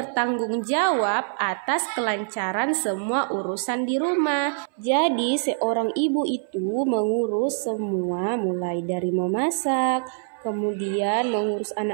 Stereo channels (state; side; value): silent; left; 60 dB below the other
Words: jawab atas kelancaran semua urusan di rumah. Jadi seorang ibu itu mengurus semua, mulai dari memasak, kemudian mengurus